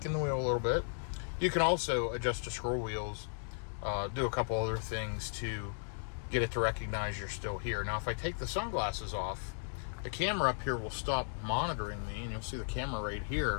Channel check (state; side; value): silent; right; digital silence